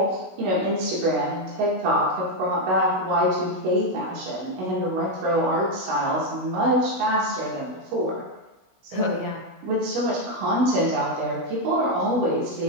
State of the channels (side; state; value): left; late; 16 ms